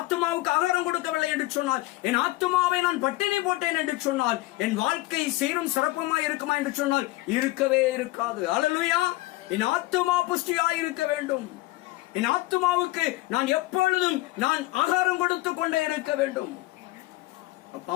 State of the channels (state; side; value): quieter; right; 19.3 dB